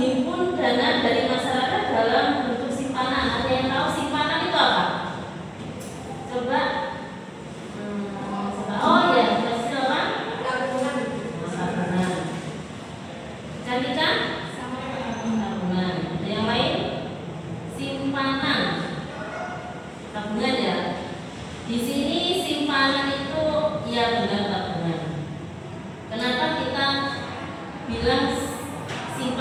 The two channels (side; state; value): both; identical; correlation 1.00